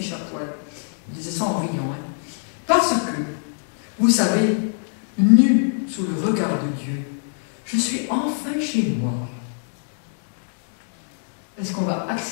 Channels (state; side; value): silent; right; 64 dB below the other